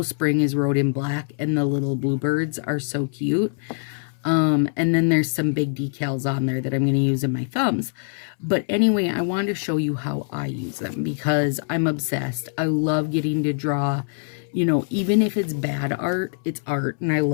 Spring is wrote in black, and the little bluebirds are so cute. And then there's some big decals on there that I'm going to use in my thumbs. But anyway, I wanted to show you how I use them, because I'm obsessed. I love getting to draw, you know, even if it's bad art, it's art, and I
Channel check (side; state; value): right; silent; 63 dB below the other